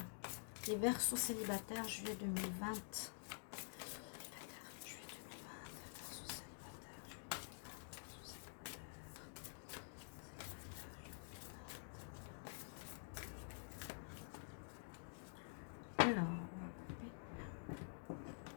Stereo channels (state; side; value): silent; right; digital silence